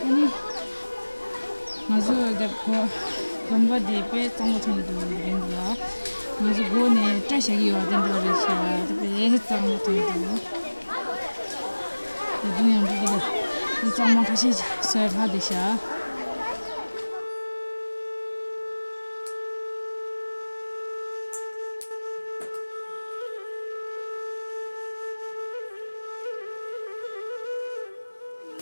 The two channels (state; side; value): inverted; both; correlation -1.00